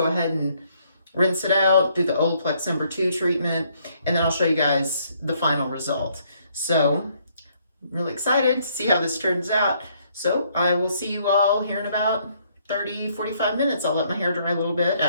ahead and rinse it out, do the Olaplex #2 treatment, and then I'll show you guys the final result. So I'm really excited to see how this turns out. So I will see you all here in about 30-45 minutes. I'll let my hair dry a little bit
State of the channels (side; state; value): both; inverted; correlation -0.68